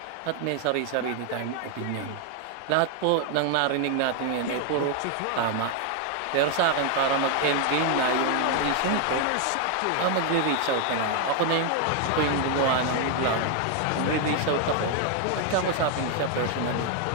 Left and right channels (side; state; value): both; different; correlation 0.00